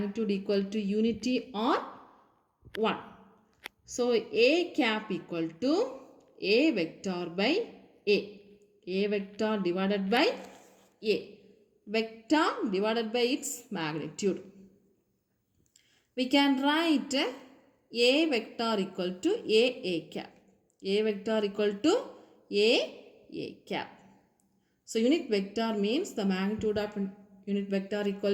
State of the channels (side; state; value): both; identical; correlation 1.00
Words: equal to unity or 1. So A cap equal to A vector by A. A vector divided by A. Vector divided by its magnitude. We can write A vector equal to A cap. A vector equal to A cap. So unit vector means the magnitude of unit vector